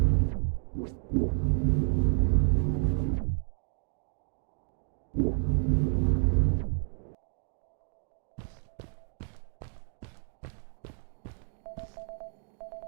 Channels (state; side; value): silent; left; 57 dB below the other